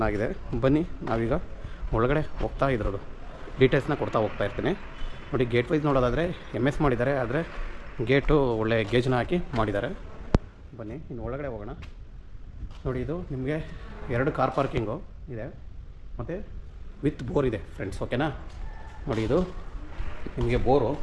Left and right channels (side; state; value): both; identical; correlation 1.00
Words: ಬನ್ನಿ ನಾವೀಗ ಒಳಗಡೆ ಹೋಗ್ತಾ ಇದ್ರದ್ದು ಡೀಟೇಲ್ಸ್ನ ಕೊಡ್ತಾ ಹೋಗ್ತಾ ಇರ್ತೀನಿ ನೋಡಿ. ಗೇಟ್ ವೈಸ್ ನೋಡೋದಾದರೆ MS ಮಾಡಿದ್ದಾರೆ, ಆದರೆ ಗೇಟು ಒಳ್ಳೆ ಗೇಜ್ನ ಹಾಕಿ ಮಾಡಿದ್ದಾರೆ. ಬನ್ನಿ ಇನ್ನು ಒಳಗಡೆ ಹೋಗೋಣ ನೋಡಿ. ಇದು ನಿಮಗೆ 2 ಕಾರ್ ಪಾರ್ಕಿಂಗು ಇದೆ ಮತ್ತು ವಿತ್ ಬೋರ್ ಇದೆ ಫ್ರೆಂಡ್ಸ್, ಓಕೆನಾ. ನೋಡಿ ಇದು ನಿಮಗೆ ಬೋರು